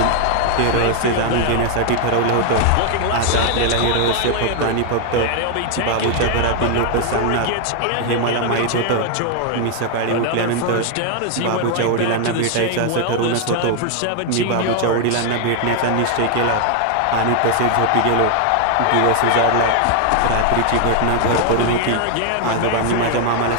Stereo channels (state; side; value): different; both; correlation 0.00